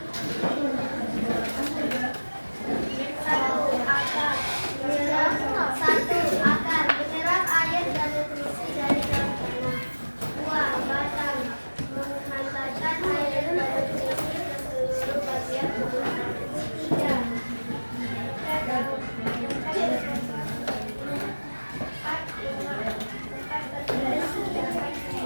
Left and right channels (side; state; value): both; inverted; correlation -1.00